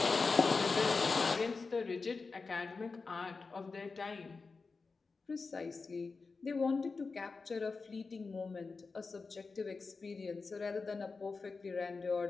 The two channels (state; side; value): quieter; right; 4.3 dB